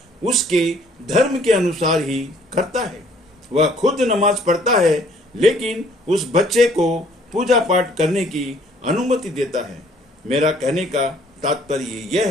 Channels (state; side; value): normal; both; correlation 0.60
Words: उसके धर्म के अनुसार ही करता है। वह खुद नमाज पढ़ता है, लेकिन उस बच्चे को पूजा पाठ करने की अनुमति देता है। मेरा कहने का तात्पर्य यह